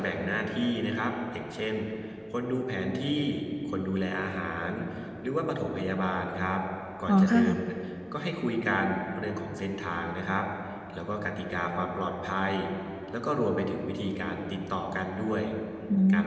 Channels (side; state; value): both; identical; correlation 1.00